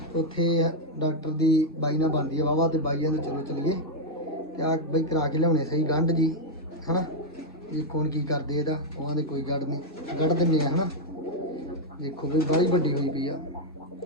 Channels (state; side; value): normal; both; correlation -0.01